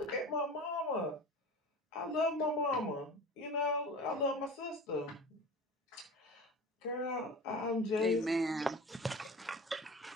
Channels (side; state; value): both; normal; correlation 0.35